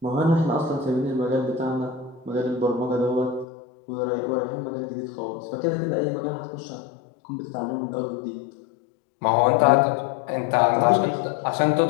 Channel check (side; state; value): right; drops out; at 3.5 s